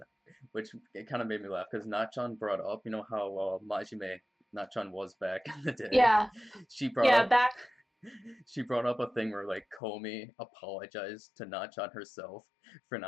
which it kind of made me laugh because Nachan brought up, you know how Majime Nachan was back in the day. Yeah, She brought yeah, up back. she brought up a thing where like Komi apologized to Nachan herself for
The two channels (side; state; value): right; drops out; at 9.8 s